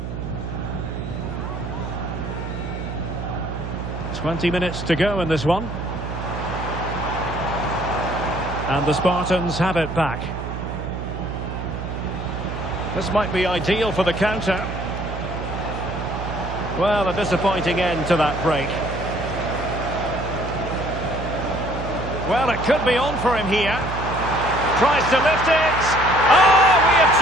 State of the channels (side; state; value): right; noise; hum, 6 dB below the sound